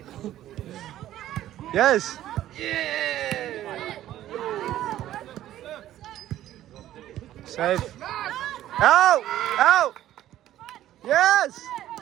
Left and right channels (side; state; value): left; quieter; 13.1 dB